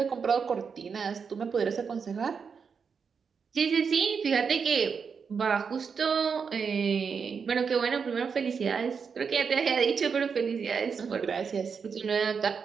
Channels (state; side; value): quieter; left; 6.0 dB